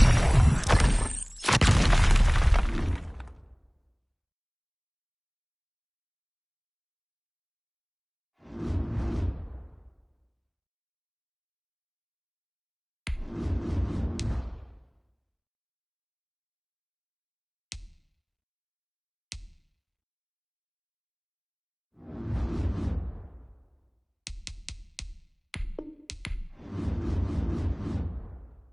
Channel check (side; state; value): both; identical; correlation 1.00